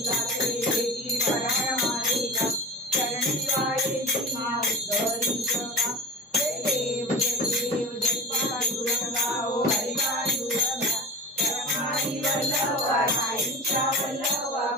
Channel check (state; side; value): normal; both; correlation 0.32